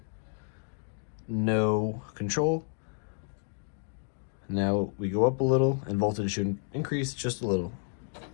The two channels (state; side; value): silent; right; 57 dB below the other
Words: No control. Now we go up a little and voltage should increase just a little.